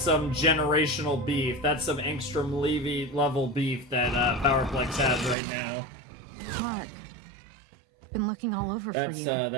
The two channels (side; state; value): left; drops out; at 5.4 s